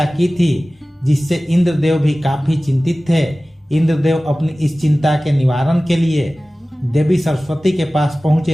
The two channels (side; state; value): both; normal; correlation 0.97